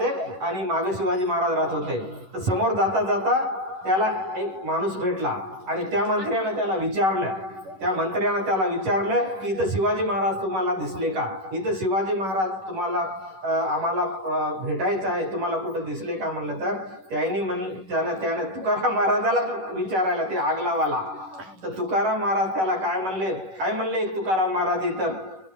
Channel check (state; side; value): late; left; 11 ms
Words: आणि मागे शिवाजी महाराज राहत होते. तर समोर जाता जाता त्याला एक माणूस भेटला आणि त्या मंत्र्यानं त्याला विचारलं की इथं शिवाजी महाराज तुम्हाला दिसले का, इथं शिवाजी महाराज तुम्हाला आम्हाला भेटायचं आहे, तुम्हाला कुठं दिसले का म्हणलं. तर त्याने तुकाराम महाराजाला विचारायला ते आगलावाला. तर तुकाराम महाराज त्याला काय म्हणले एक तुकाराम महाराज